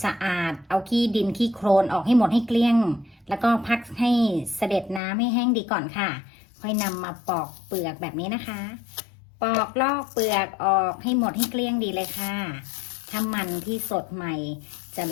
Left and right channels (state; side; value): drops out; right; at 5.0 s